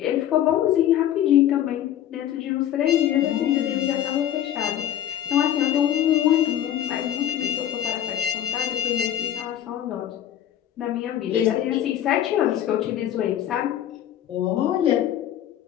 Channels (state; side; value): quieter; right; 11.2 dB